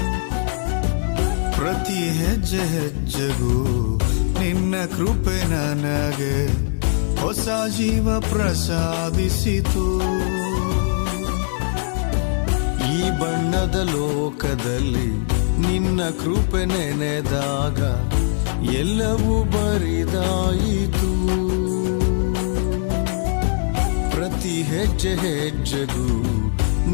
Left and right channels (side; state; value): right; silent; digital silence